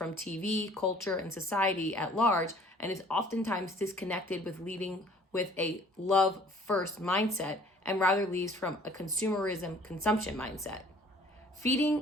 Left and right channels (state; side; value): normal; both; correlation 0.54